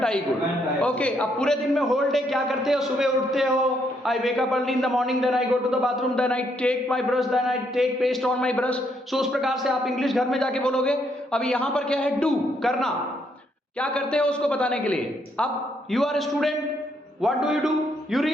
आई गुड। ओके, अब पूरे दिन में होल डे क्या करते हो? सुबह उठते हो, I wake up early in the morning, then I go to the bathroom, then I take my brush, then I take paste on my brush. So उस प्रकार से आप इंग्लिश घर में जाके बोलोगे। अब यहां पर क्या है? डू, करना। क्या करते हो उसको बताने के लिए। अब you are a student, what do you do? You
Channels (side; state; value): both; normal; correlation 0.74